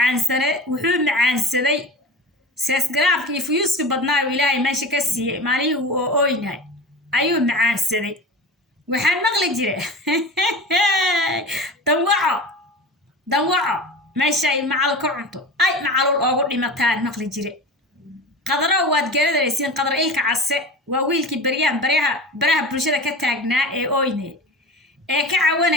macaansaday seesgaraafka iyo fuyuuska badnaa ilaahay meesha ka siiyey maalihii uu ooynahay ayuu macaansaday. waxaan maqli jire danwaco meeshay macal ka cunto ay macalul oogu dhimataan maqli jire. qadaro waad garanaysiin qadar ilka case waa wiilkii baraha bulshada ka taagnaa ee ooynay ee ka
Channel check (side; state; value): both; normal; correlation 0.32